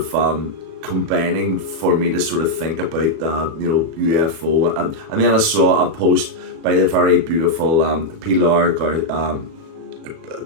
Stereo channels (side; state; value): left; late; 37 ms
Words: combining for me to sort of think about UFO, and then I saw a post by the very beautiful Pilar